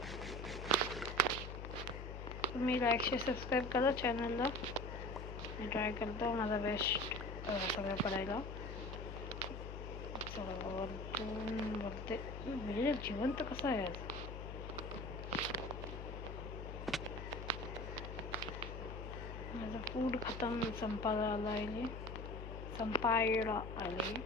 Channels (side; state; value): left; noise; hum, 8 dB below the sound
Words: तुम्ही लाईक सबस्क्राईब करा चॅनलला. मी ट्राय करतो माझा बेस्ट सगळं पडायला. वरतून बघते म्हणजे जिवंत कसं आहे आज. माझं फूड खतम संपायला आले.